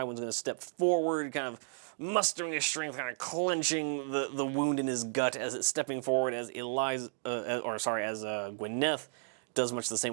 going to step forward, kind of mustering his strength, kind of clenching the wound in his gut as it's stepping forward, as Gwyneth does much the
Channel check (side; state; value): left; silent; digital silence